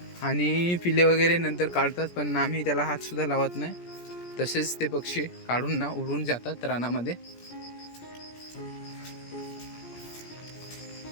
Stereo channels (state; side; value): late; right; 17 ms